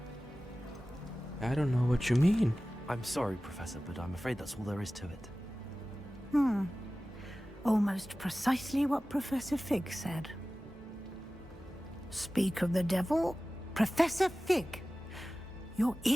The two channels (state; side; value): normal; both; correlation 0.96